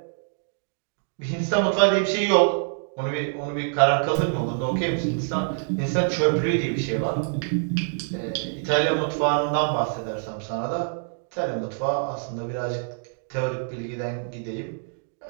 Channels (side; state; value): left; silent; digital silence